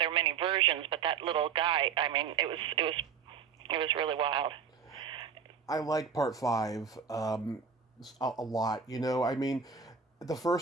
many versions, but that little guy, it was really wild. I like part 5 a lot. The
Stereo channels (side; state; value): left; quieter; 6.3 dB